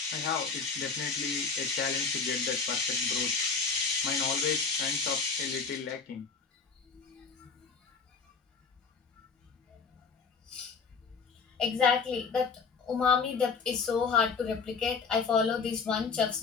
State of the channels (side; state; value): right; quieter; 5.2 dB